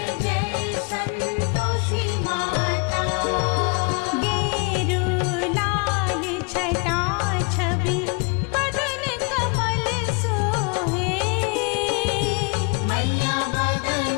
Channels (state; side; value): quieter; right; 32.6 dB